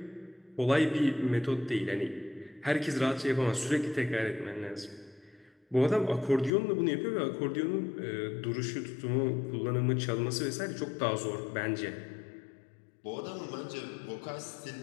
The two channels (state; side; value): drops out; right; at 6.5 s